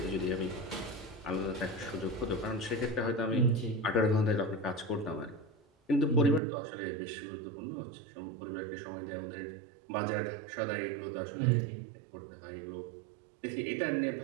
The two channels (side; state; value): left; drops out; at 6.4 s